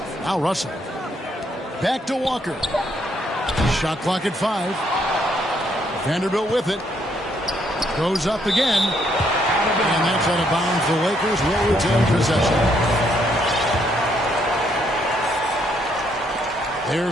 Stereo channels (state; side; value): normal; both; correlation 0.72